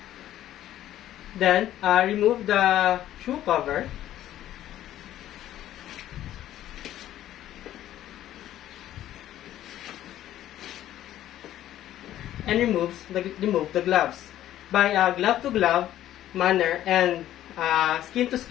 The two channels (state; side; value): quieter; right; 12.8 dB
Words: Then, remove the shoe cover. And remove the gloves by glove to glove manner and skin to